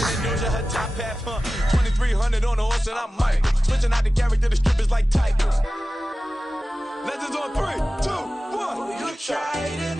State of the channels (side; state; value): both; normal; correlation 0.95